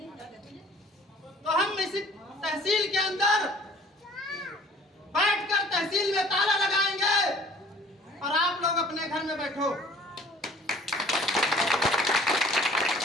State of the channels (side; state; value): both; normal; correlation 0.51